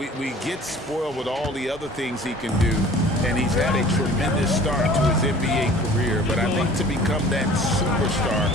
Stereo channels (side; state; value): both; normal; correlation 0.47